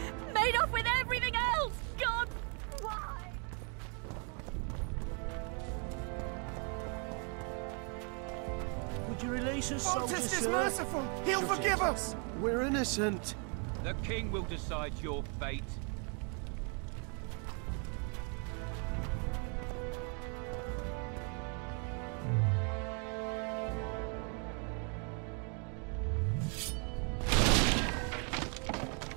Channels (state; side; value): quieter; left; 37.7 dB